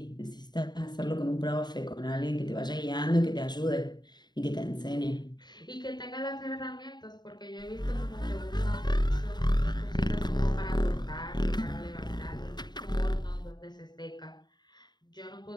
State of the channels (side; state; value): right; late; 0.21 ms